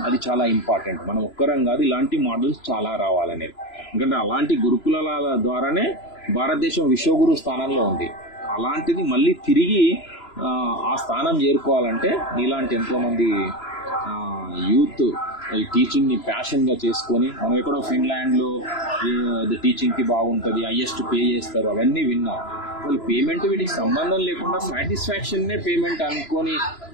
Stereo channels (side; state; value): right; late; 3.0 ms